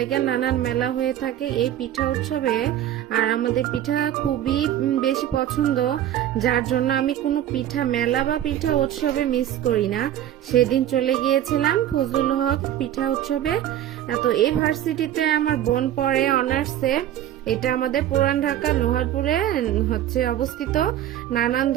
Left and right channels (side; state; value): left; quieter; 11.8 dB